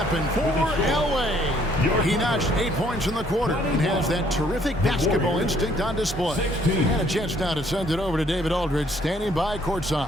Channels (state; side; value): normal; both; correlation 0.64